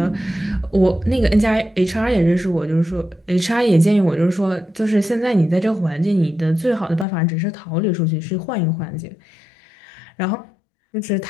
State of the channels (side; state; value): right; drops out; at 7.1 s